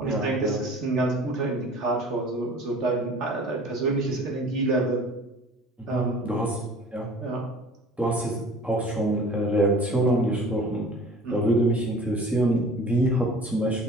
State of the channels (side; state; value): both; normal; correlation 0.45